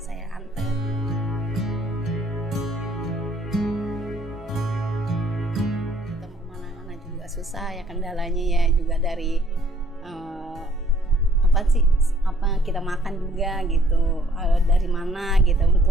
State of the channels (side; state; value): both; normal; correlation 0.62